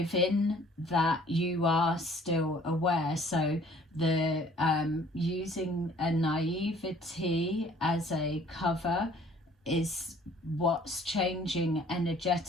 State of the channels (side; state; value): both; normal; correlation 0.55